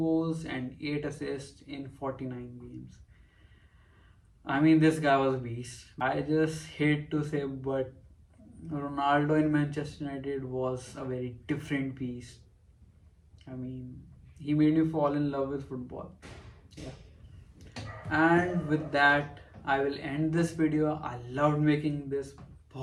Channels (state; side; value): identical; both; correlation 1.00